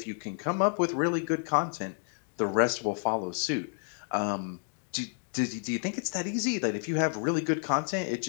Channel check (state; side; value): silent; right; 58 dB below the other